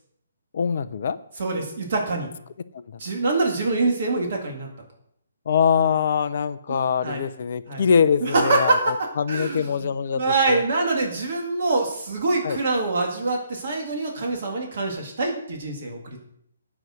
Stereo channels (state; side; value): inverted; both; correlation -0.69